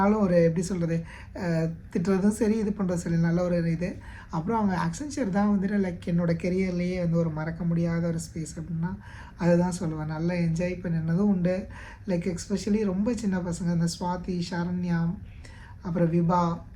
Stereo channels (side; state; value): both; identical; correlation 1.00